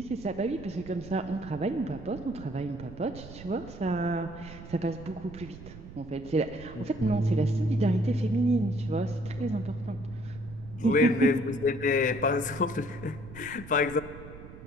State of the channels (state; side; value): noise; right; rumble, 15 dB below the sound